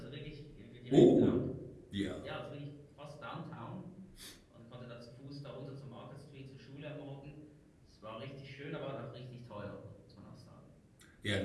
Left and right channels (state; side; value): identical; both; correlation 1.00